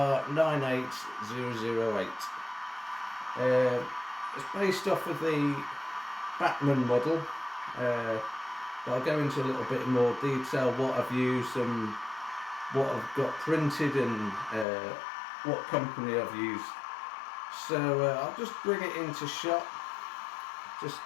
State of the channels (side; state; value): right; drops out; at 14.7 s